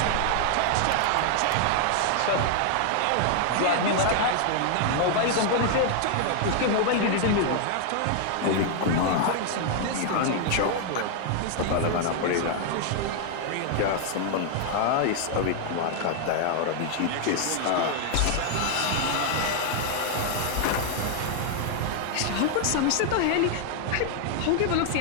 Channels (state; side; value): different; both; correlation 0.00